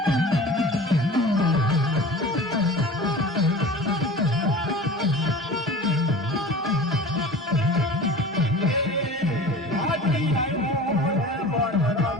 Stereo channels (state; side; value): normal; both; correlation 0.39